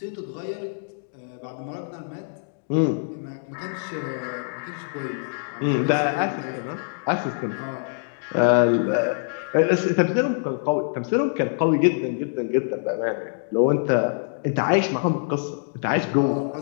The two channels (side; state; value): right; silent; digital silence